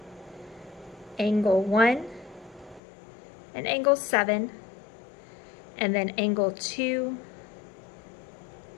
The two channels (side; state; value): right; drops out; at 2.8 s